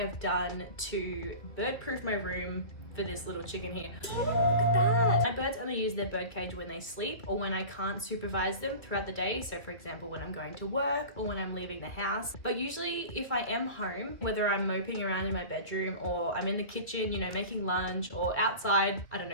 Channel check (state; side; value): late; right; 2.6 ms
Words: done to bird-proof my room for this little chicken here. Look at that! My birds only use their bird cage when they sleep or when I can't supervise them throughout the day. So for example, when I'm going to work or when I'm leaving the house. But usually if I am home, whether I'm moping around in my bedroom or I'm in the kitchen, you know, making lunch, or outside, I don't